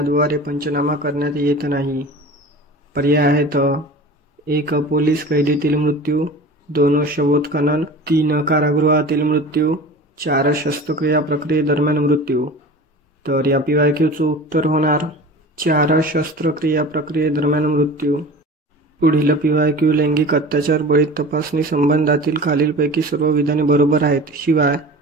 पंचनामा करण्यात येत नाही? पर्याय आहेत 1 पोलीस कैदीतील मृत्यू, 2 शवोत्खनन, 3 कारागृहातील मृत्यू, 4 शस्त्रक्रिया प्रक्रियेदरम्यान मृत्यू. तर या PYQचं उत्तर होणार 4 शस्त्रक्रिया प्रक्रियेदरम्यान मृत्यू. पुढील PYQ लैंगिक अत्याचार बळी तपासणी संबंधातील खालीलपैकी सर्व विधाने बरोबर आहेत. शिवाय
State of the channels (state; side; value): normal; both; correlation 0.37